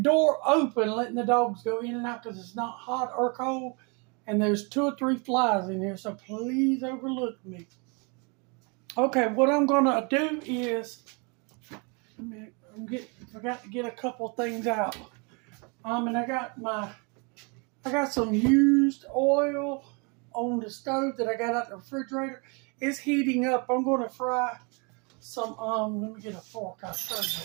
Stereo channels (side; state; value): left; quieter; 32.5 dB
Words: door open, letting the dogs go in and out because it's not hot or cold, and there's 2 or 3 flies in here, so please overlook me. Okay, what I'm gonna do is, forgot to get a couple things out. And I got some used oil on the stove that I got out the refrigerator. It's heating up. I'm gonna fry some, let me get a fork, I'll show